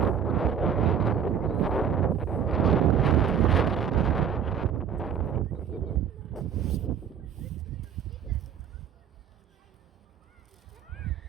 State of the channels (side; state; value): left; quieter; 8.0 dB